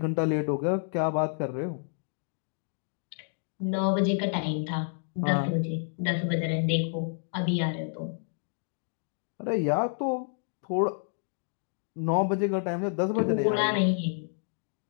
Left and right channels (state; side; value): silent; right; 58 dB below the other